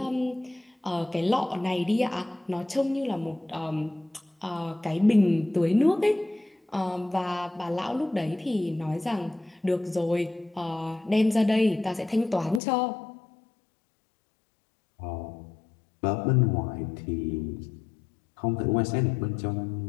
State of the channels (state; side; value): drops out; right; at 12.6 s